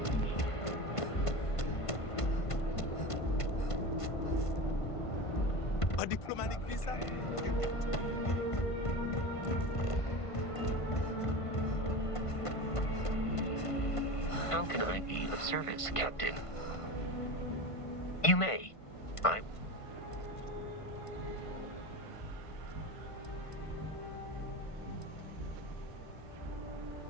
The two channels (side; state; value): right; late; 1.5 ms